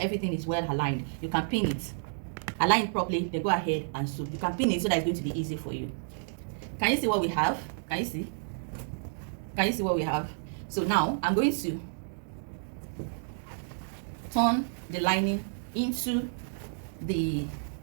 is well aligned. You can pin it. Align it properly, then go ahead and sew. You can pin it so that it's going to be easy for you. Can you see what we have? Can you see? Can you see what we have? So now I'm going to turn the lining into the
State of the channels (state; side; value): silent; left; digital silence